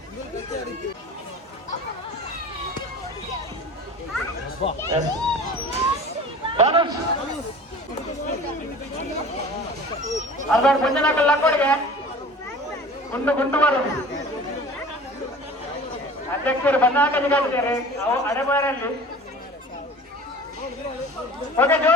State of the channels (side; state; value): both; normal; correlation 0.41